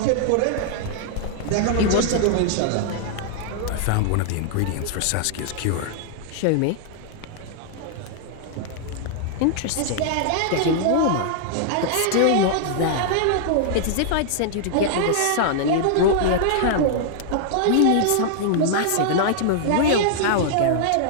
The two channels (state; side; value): different; both; correlation -0.01